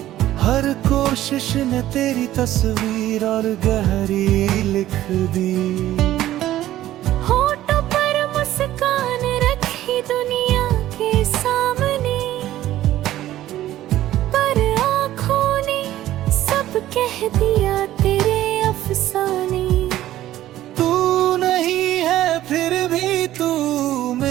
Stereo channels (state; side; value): quieter; left; 13.9 dB